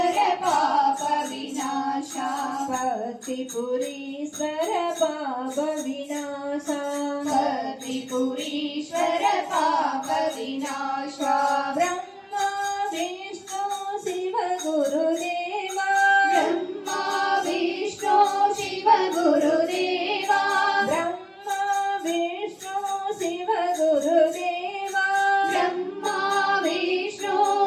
पाप विनाशा कर्तिपुरीश्वर पाप विनाशा कर्तिपुरीश्वर पाप विनाशा ब्रह्मा विष्णु शिव गुरुदेवा ब्रह्मा विष्णु शिव गुरुदेवा ब्रह्मा विष्णु शिव गुरुदेवा ब्रह्मा विष्णु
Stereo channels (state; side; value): identical; both; correlation 1.00